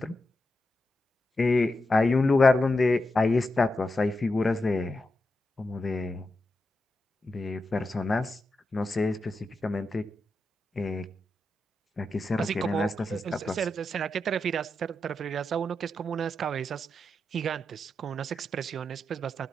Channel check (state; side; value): normal; both; correlation 0.87